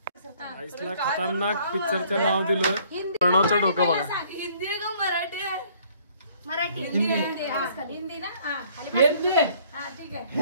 आईसला खतरनाक पिक्चरचं नाव दिलं प्रणवचं डोकं बघा हिंदी आहे का मराठी आहे मराठी हिंदी ना हा ठीक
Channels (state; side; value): inverted; both; correlation -0.60